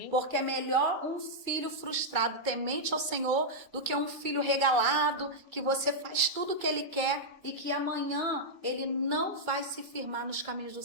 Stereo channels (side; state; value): both; normal; correlation -0.06